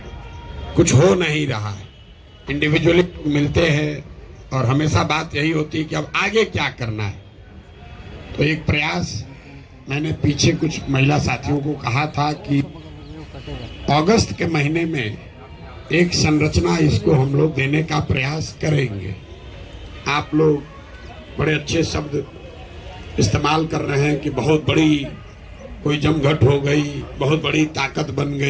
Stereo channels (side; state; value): both; identical; correlation 1.00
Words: कुछ हो नहीं रहा है। इंडिविजुअली मिलते हैं और हमेशा बात यही होती है कि अब आगे क्या करना है। तो एक प्रयास मैंने पीछे कुछ महिला साथियों को कहा था कि अगस्त के महीने में एक संरचना इसको हम लोग देने का प्रयास करेंगे। आप लोग बड़े अच्छे शब्द इस्तेमाल कर रहे हैं कि बहुत बड़ी कोई जमघट हो गई, बहुत बड़ी ताकत बन